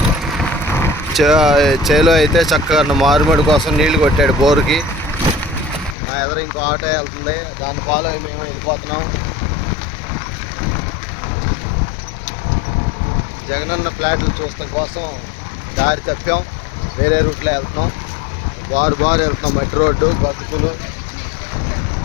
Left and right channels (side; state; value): right; drops out; at 6.0 s